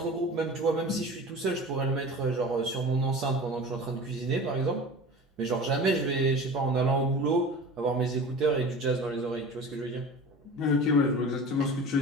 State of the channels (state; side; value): normal; both; correlation 0.36